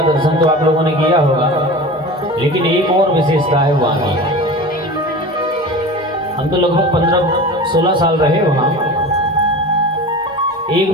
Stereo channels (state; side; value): normal; both; correlation 0.33